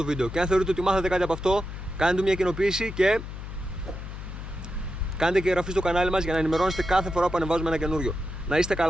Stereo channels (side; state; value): left; noise; hum, 9 dB below the sound